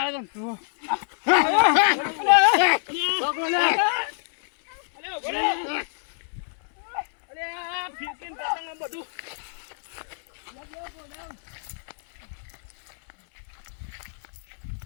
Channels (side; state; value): right; silent; 61 dB below the other